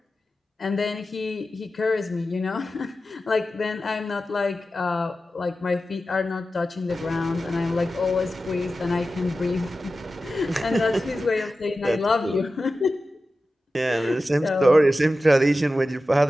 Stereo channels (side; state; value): both; normal; correlation 0.93